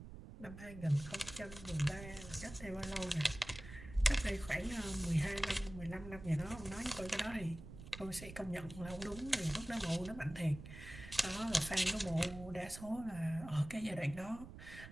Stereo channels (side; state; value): right; noise; rumble, 13 dB below the sound